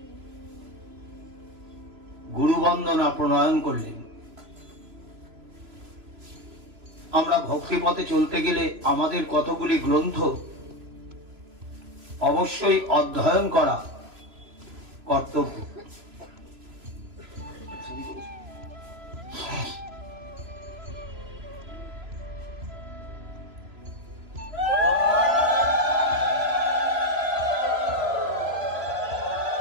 গুরুবন্দনা প্রণয়ন করলেন। আমরা ভক্তিপথে চলতে গেলে আমাদের কতগুলি গ্রন্থ অবশ্যই অধ্যয়ন করা কর্তব্য।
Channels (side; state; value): left; late; 3.0 ms